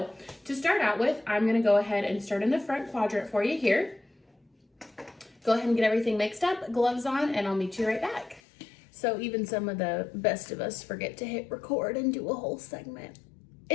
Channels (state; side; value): drops out; right; at 8.4 s